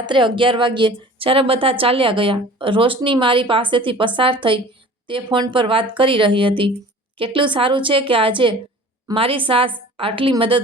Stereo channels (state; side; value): normal; both; correlation 0.44